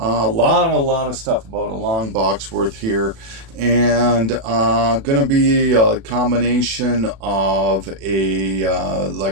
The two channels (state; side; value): late; left; 36 ms